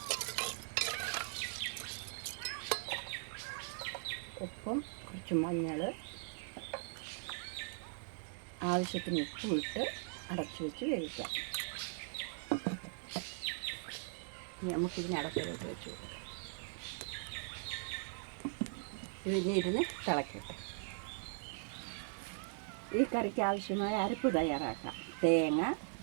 ഉപ്പും കുറച്ച് മഞ്ഞൾ, ആവശ്യത്തിന് ഉപ്പും ഇട്ട് അടച്ചു വെച്ച് വേവിക്കാം. ഇനി നമുക്കിതിനെ അടപ്പിലോട്ട് വെച്ച് കൊടുക്കാം. ഇതിരുന്ന് തിളക്കട്ടെ. ഈ കറിക്ക് ആവശ്യമായ അരപ്പ് തയ്യാറാക്കാം. തേങ്ങ,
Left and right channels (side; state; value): left; silent; 51 dB below the other